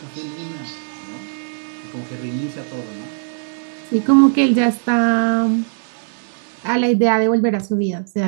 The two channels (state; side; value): silent; left; digital silence